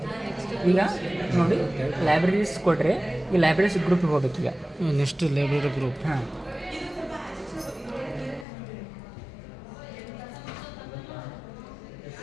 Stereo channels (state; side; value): drops out; right; at 8.5 s